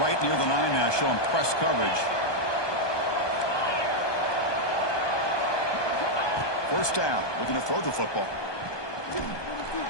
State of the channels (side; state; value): right; late; 1.2 ms